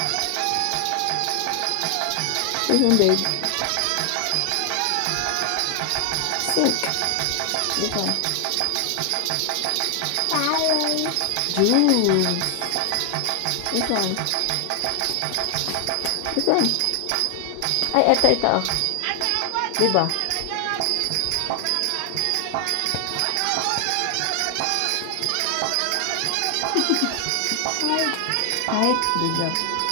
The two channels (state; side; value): different; both; correlation 0.00